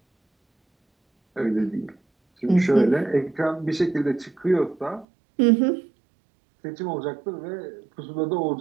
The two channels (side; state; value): left; drops out; at 5.1 s